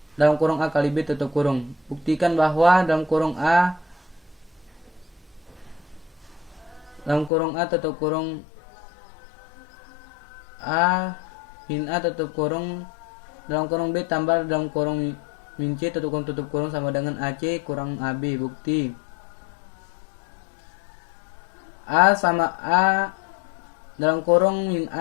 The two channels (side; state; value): right; drops out; at 7.3 s